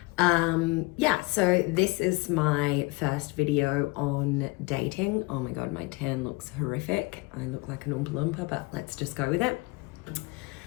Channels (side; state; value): right; quieter; 24.6 dB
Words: So this is my first video on dating. Oh my God, my tan looks horrific. I look like an Oompa Loompa, but let's just go with it.